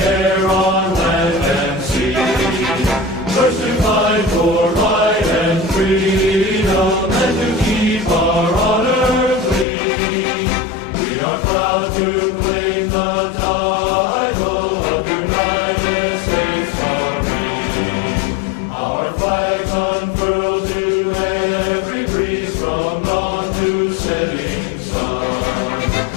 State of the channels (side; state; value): right; drops out; at 9.7 s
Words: on land and sea. First to fight for right and freedom, and to keep our honor clean. We are proud to claim the title of United States Marine. Our flags unfurled to every breeze, from dawn to setting sun.